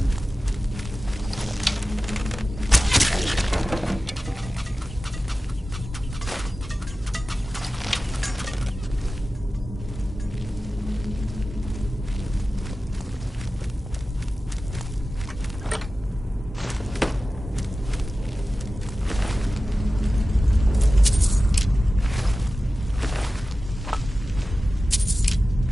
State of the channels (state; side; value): normal; both; correlation 0.95